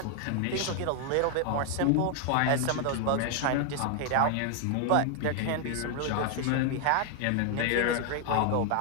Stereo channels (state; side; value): different; both; correlation 0.00